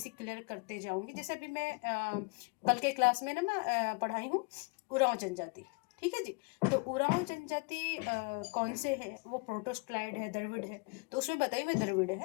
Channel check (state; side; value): quieter; right; 31.5 dB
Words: क्लियर करते जाऊंगी। जैसे अभी मैं कल के क्लास में ना मैं पढ़ाई हूँ उरांव जनजाति, ठीक है जी। तो उरांव जनजाति कौन से है, वो प्रोटोस्क्लाइड है, द्रविड़ है। तो उसमें बताइए मैं द्रविड़